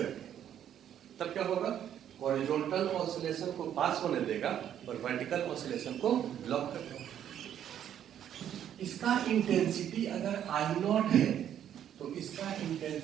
रखें तब क्या होगा? हॉरिजॉन्टल ऑसिलेशन को पास होने देगा और वर्टिकल ऑसिलेशन को ब्लॉक कर देगा। इसका इंटेंसिटी अगर आई नॉट है तो इसका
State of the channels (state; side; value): quieter; left; 10.1 dB